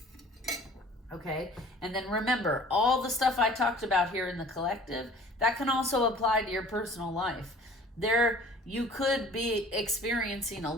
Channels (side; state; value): both; normal; correlation 0.49